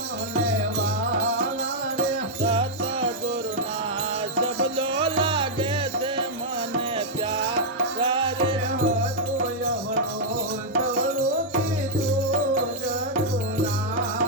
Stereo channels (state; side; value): normal; both; correlation -0.05